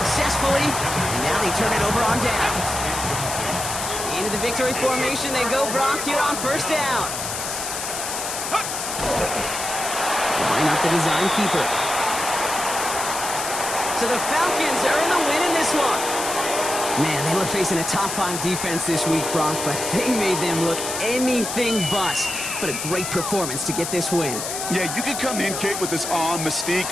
And now they turn it over on downs. Into the victory formation they go, Brock, here on 1st down. Line up the design keeper. So the Falcons are in the win in this one. Man, they were facing a top-5 defense this week, Brock, but they made them look anything but. What a great performance to get this win. Yeah, you could come in, Kate, with this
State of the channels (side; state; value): left; noise; hiss, 5 dB below the sound